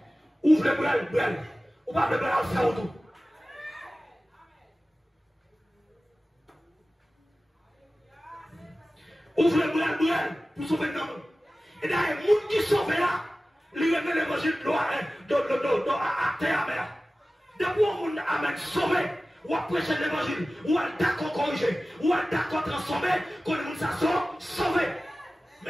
Ouvre le brel, ou pas le brel à faire autour. Ouvre le brel pour sauver l'homme. Et d'ailleurs, les gens qui sauvent là, ils remettent l'évangile à terre amère. Depuis qu'on a sauvé, ou à prêcher l'évangile, ou à d'accord corriger, ou à d'accord transformer, qu'on nous a sauvé.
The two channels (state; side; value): normal; both; correlation 0.96